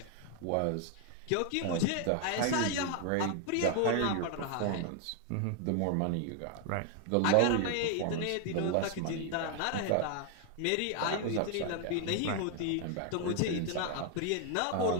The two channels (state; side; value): different; both; correlation 0.00